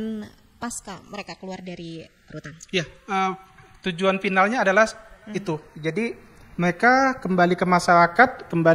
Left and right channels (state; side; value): identical; both; correlation 1.00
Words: pasca mereka keluar dari rutan? Iya. Tujuan finalnya adalah itu. Jadi mereka kembali ke masyarakat,